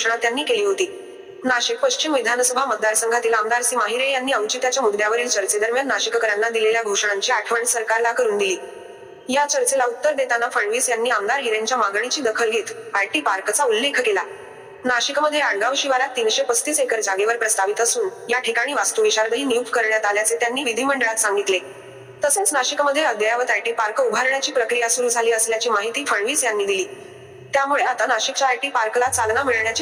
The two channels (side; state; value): both; identical; correlation 1.00